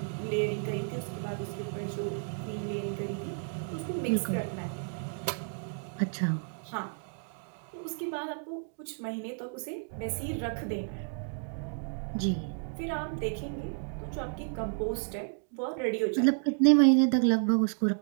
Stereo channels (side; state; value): left; silent; 56 dB below the other